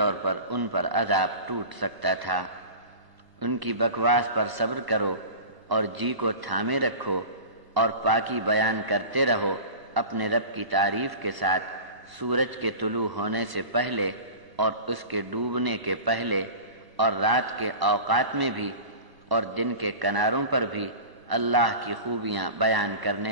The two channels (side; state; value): left; late; 1.1 ms